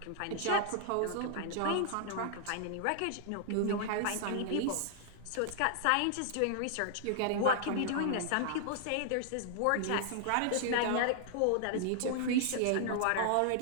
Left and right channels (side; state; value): both; different; correlation -0.01